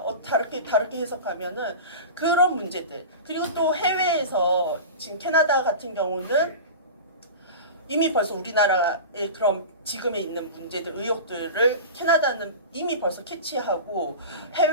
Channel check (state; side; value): inverted; both; correlation -0.31